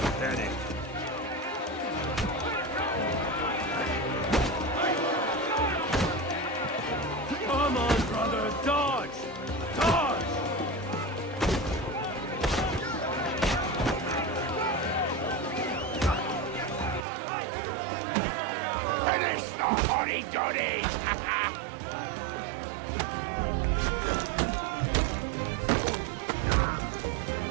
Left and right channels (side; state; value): left; drops out; at 17.1 s